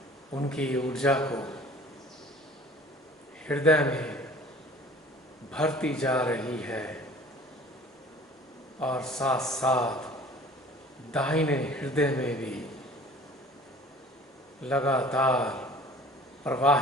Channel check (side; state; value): both; normal; correlation 0.48